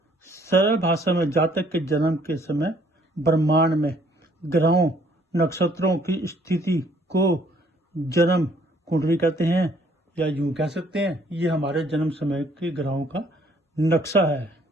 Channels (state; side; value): normal; both; correlation 0.63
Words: सरल भाषा में जातक के जन्म के समय ब्रह्मांड में ग्रहों नक्षत्रों की स्थिति को जन्म कुंडली कहते हैं, या यूं कह सकते हैं ये हमारे जन्म समय के ग्रहों का नक्शा है।